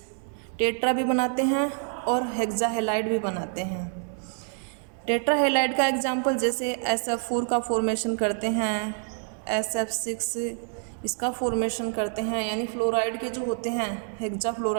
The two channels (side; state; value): left; silent; 55 dB below the other